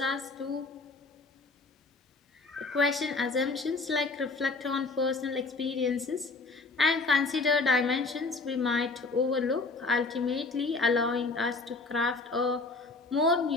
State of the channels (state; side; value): quieter; right; 3.7 dB